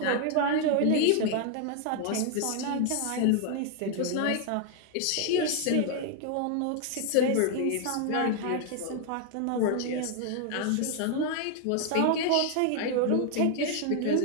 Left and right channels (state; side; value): different; both; correlation 0.00